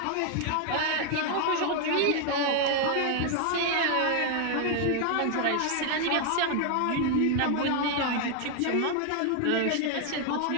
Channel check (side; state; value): both; different; correlation 0.00